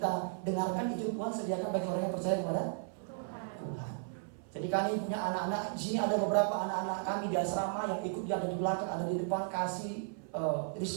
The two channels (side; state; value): left; silent; 54 dB below the other